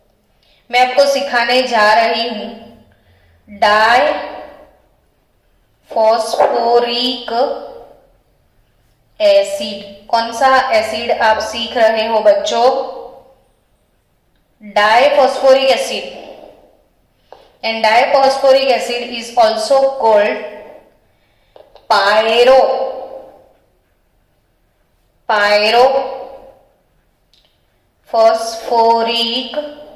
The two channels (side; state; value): both; identical; correlation 1.00